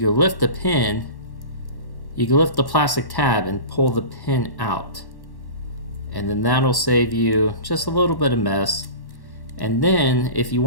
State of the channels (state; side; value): late; right; 1.1 ms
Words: lift the pin, you can lift the plastic tab and pull the pin out. And then that'll save you just a little bit of mess. And then if you